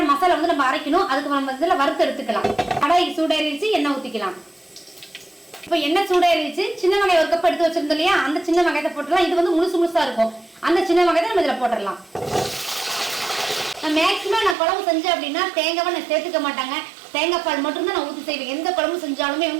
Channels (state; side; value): drops out; left; at 14.6 s